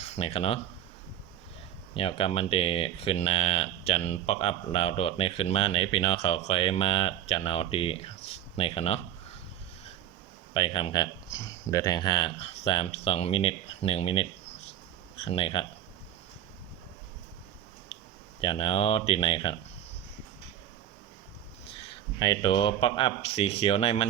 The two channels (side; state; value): left; quieter; 10.9 dB